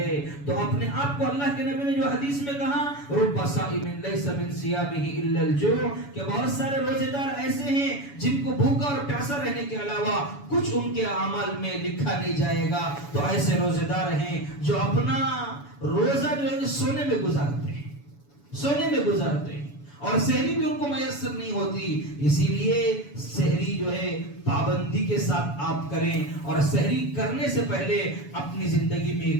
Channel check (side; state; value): right; late; 7.0 ms